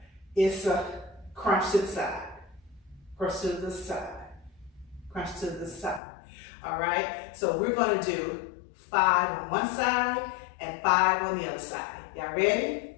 it's a crunch to the side, crunch to the side, crunch to the side. All right? So we're going to do 5 on one side and 5 on the other side. Y'all ready?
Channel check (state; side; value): drops out; right; at 6.0 s